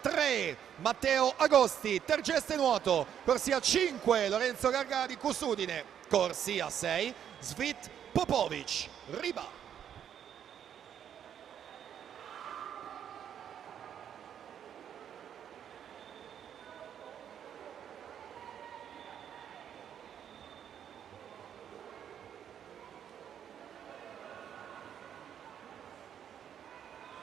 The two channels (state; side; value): quieter; left; 9.2 dB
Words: Matteo Agosti, Tergeste Nuoto, corsia 5 Lorenzo Gargani, Cussudine, corsia 6 Svit Popovic, Riba.